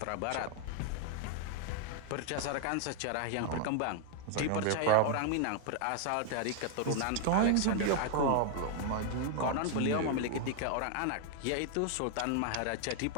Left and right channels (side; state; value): both; different; correlation 0.00